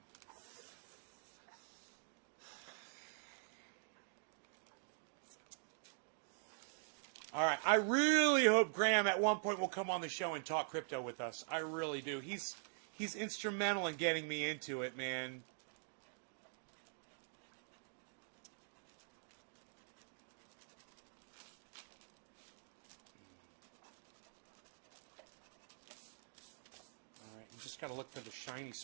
All right. I really hope Graham at one point will come on the show and talk crypto with us. I really do. He's instrumental in getting me into it, man. All right. You just got to look for the shiny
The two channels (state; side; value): silent; left; digital silence